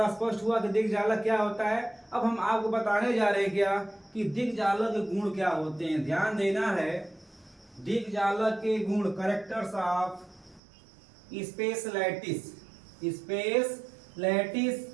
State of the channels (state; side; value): drops out; left; at 10.6 s